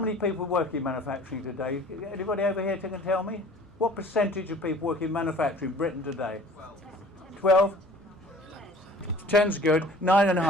people work in manufacturing today? Anybody over here can tell me? What percentage of people work in manufacturing in Britain today? 12? 10's good.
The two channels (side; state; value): both; normal; correlation 0.48